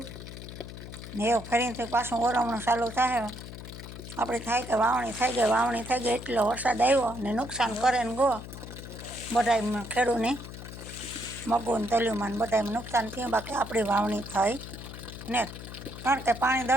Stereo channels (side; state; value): left; noise; hum, 12 dB below the sound